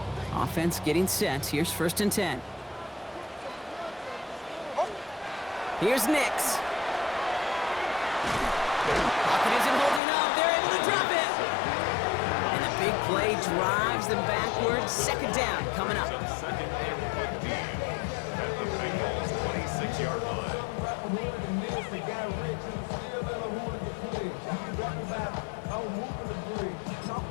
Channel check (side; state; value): right; drops out; at 10.0 s